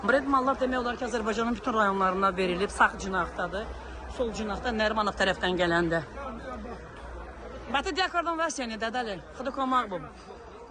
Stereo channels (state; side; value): identical; both; correlation 1.00